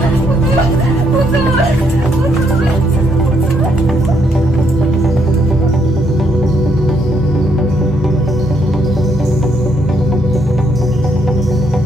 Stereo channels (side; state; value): both; normal; correlation 0.73